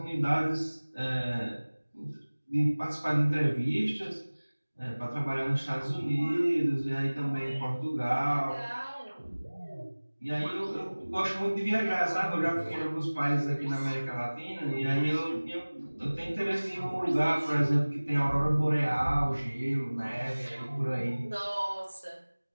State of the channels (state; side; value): inverted; both; correlation -1.00